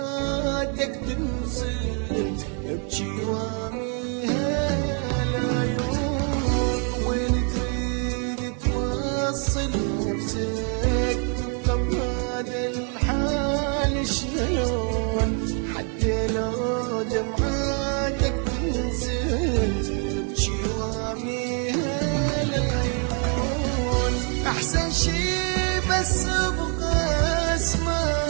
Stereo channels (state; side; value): quieter; left; 38.9 dB